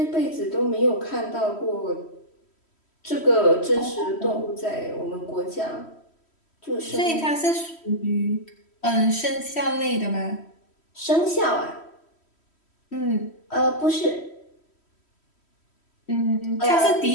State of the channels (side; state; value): right; late; 3.1 ms